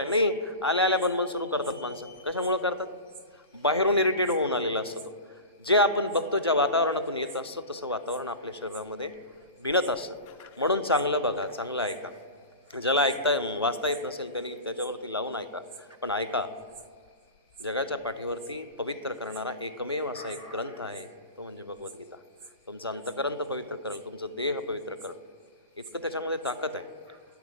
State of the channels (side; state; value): both; inverted; correlation -0.31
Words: नाही, आल्या आल्या बनबन सुरू करतात माणसं. कशामुळे करतात? बाहेरून इरिटेट होऊन आलेलं असतं. जे आपण बघतो, ज्या वातावरणातून येत असतं तसं वातावरण आपल्या शरीरामध्ये भिनत असतं. म्हणून चांगलं बघा, चांगलं ऐका. ज्याला वाचता येत नसेल त्यांनी त्याच्यावरती लावून ऐका, पण ऐका. जगाच्या पाठीवरती पवित्र करणारा एकमेव असा एक ग्रंथ आहे, तो म्हणजे भगवद्गीता. तुमचं अंतकरण पवित्र करेल, तुमचं देह पवित्र करेल, इतकं त्याच्यामध्ये ताकद आहे.